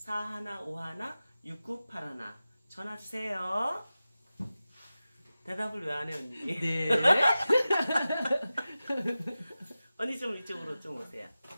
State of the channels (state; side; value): inverted; both; correlation -0.95